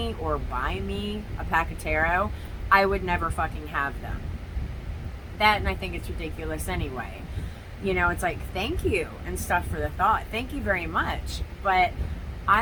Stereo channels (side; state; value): both; identical; correlation 1.00